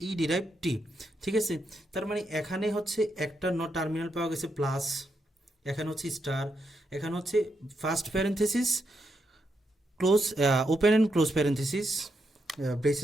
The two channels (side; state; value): both; normal; correlation 0.82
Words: ই ডিরাইভড টি। ঠিক আছে, তার মানে এখানে হচ্ছে একটা টার্মিনাল পাওয়া গেছে প্লাস, এখানে হচ্ছে স্টার, এখানে হচ্ছে first parenthesis close, open and close parenthesis,